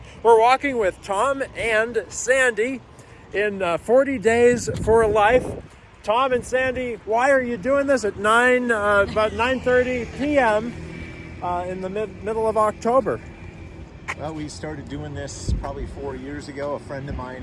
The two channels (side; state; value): both; identical; correlation 1.00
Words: we're walking with Tom and Sandy in 40 Days for Life. Tom and Sandy, why are you doing this at about 9:30 p.m. In the middle of October? Well, we started doing this probably 4 years ago. A